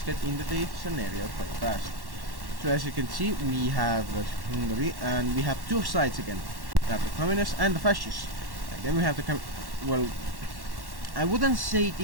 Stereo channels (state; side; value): late; left; 1.1 ms